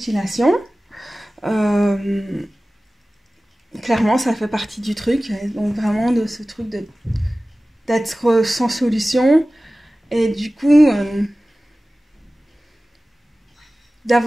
clairement ça fait partie du truc, donc vraiment de ce truc d'être sans solution, et du coup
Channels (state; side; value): normal; both; correlation 0.97